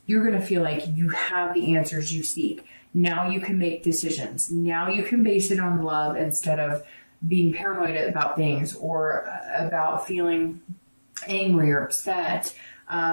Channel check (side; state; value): both; inverted; correlation -1.00